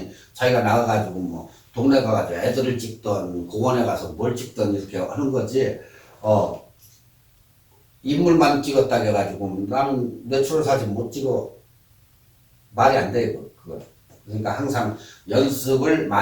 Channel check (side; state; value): both; identical; correlation 1.00